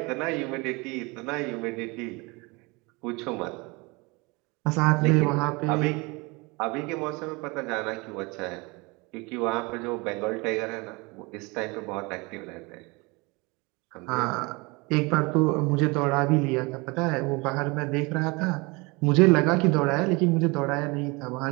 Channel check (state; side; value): quieter; left; 26.4 dB